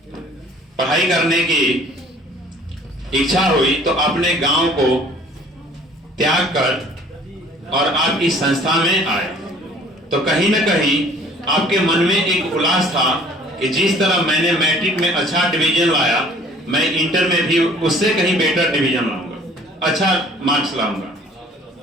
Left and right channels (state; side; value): normal; both; correlation 0.53